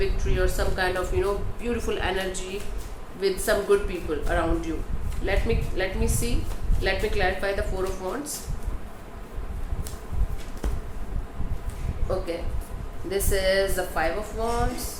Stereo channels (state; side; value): identical; both; correlation 1.00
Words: or some kind of beautiful energy with some good people around you. Let me see. Let me clarify the Four of Wands. Okay, this is the Five of